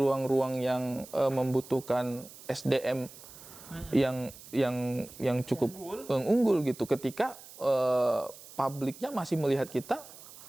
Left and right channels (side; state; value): right; noise; hiss, 18 dB below the sound